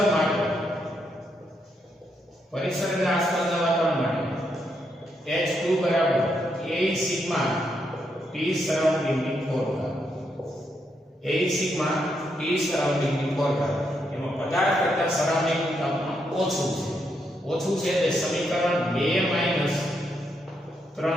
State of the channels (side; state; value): both; normal; correlation 0.79